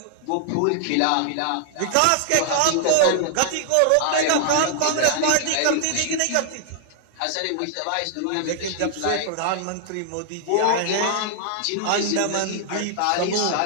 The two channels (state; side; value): different; both; correlation -0.01